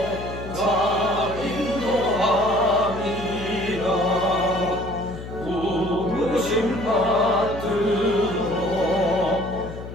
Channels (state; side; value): noise; left; hum, 10 dB below the sound